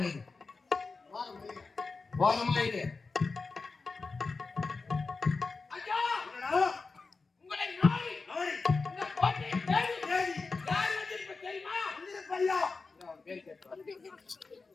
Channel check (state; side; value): quieter; right; 4.2 dB